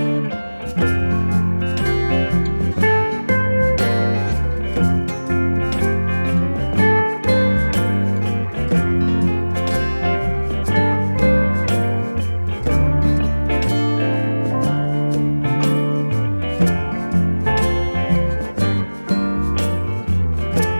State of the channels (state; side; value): inverted; both; correlation -1.00